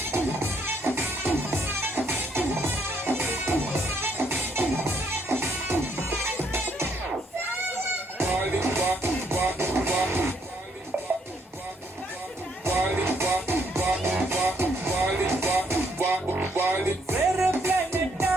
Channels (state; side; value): normal; both; correlation 0.71